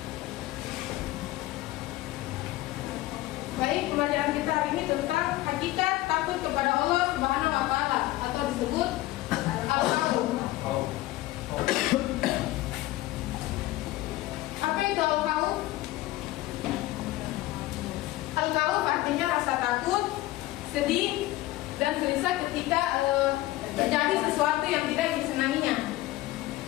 Baik, pembelajaran kita hari ini tentang hakikat takut kepada Allah Subhanahu wa Ta'ala atau disebut al-khawf. Apa itu al-khawf? Al-khawf artinya rasa takut, sedih, dan gelisah ketika terjadi sesuatu yang tidak disenanginya.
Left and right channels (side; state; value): right; quieter; 17.1 dB